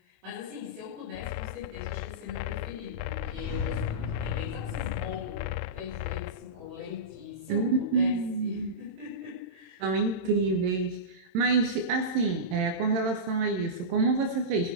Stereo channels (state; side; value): late; left; 22 ms